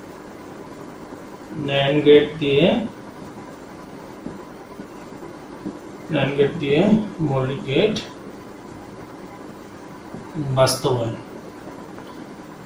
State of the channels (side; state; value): both; identical; correlation 1.00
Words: ন্যান্ড গেট দিয়ে মৌলিক গেট বাস্তবায়ন।